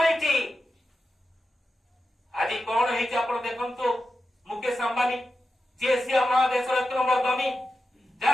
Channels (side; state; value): both; normal; correlation 0.90